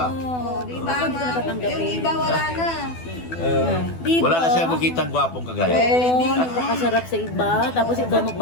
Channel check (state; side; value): late; right; 12 ms